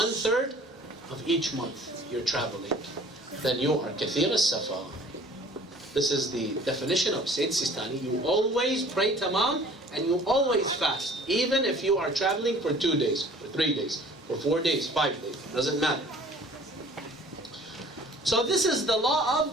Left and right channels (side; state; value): both; normal; correlation 0.50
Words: of each month you're traveling, then you are kathir al-safar. This is the definition of Sayyid Sistani. You always pray tamam and you always fast, even if you are traveling for 2 days, for 3 days, for 4 days, 5 days, doesn't matter. So this is the law